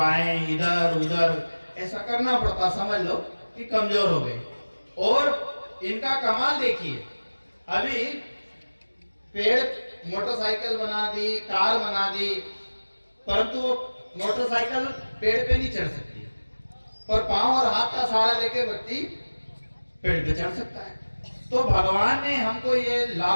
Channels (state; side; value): inverted; both; correlation -1.00